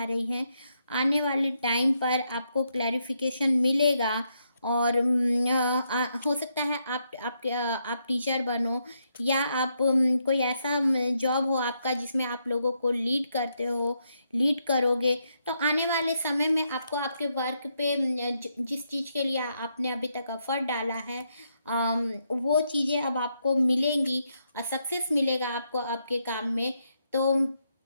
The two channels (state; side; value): inverted; both; correlation -0.79